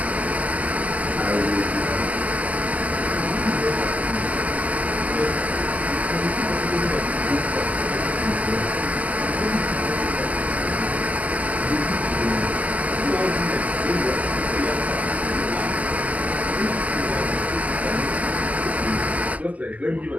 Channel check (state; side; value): late; left; 0.075 ms